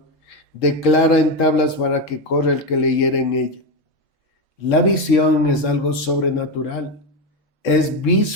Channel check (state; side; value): normal; both; correlation 0.12